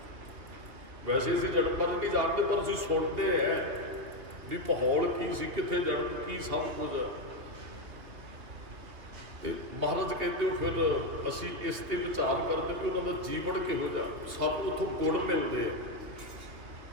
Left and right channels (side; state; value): left; late; 2.5 ms